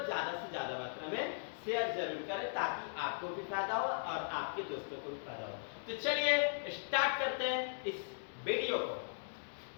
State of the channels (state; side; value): silent; right; digital silence